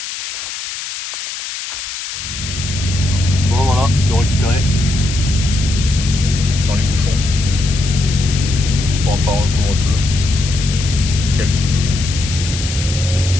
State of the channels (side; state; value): left; noise; hiss, 7 dB below the sound